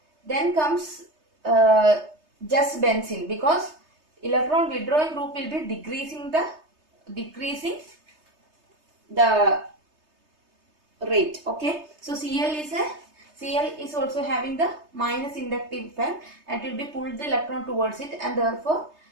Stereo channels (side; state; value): left; late; 3.3 ms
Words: just benzene, because electron withdrawing group will be decreasing the rate. Okay, so Cl is also having the minus inductive effect, and it will be pulled the electron towards it, and therefore